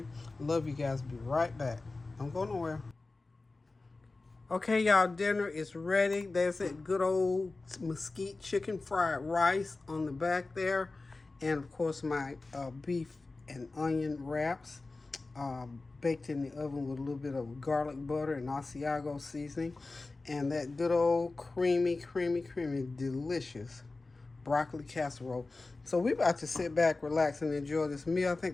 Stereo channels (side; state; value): right; quieter; 3.5 dB